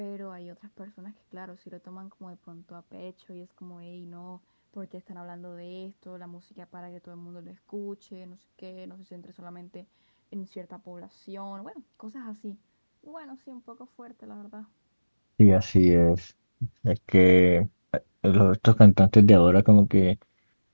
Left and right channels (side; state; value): both; inverted; correlation -1.00